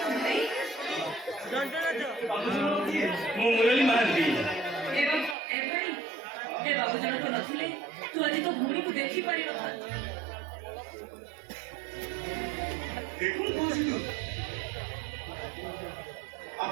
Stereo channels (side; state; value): left; drops out; at 5.4 s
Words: ଭାଇ ମୁଁ ମୁରଲୀ ମହାନ୍ତି। ଏବଂ ଏ ଭାଇ ଏ ବାବୁ ଜଣକ ନଥିଲେ ତୁ ଆଜି ତୋ ଭଉଣୀକୁ ଦେଖିପାରିନଥାନ୍ତୁ। দেখুন কৌশিক